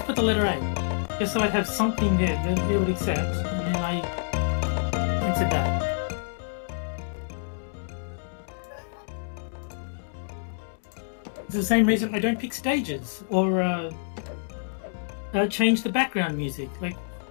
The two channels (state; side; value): silent; right; digital silence